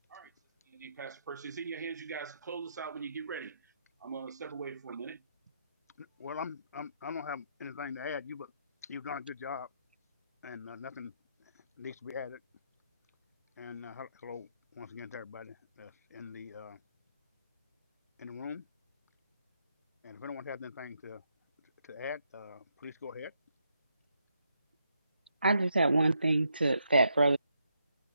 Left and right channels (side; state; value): both; inverted; correlation -0.78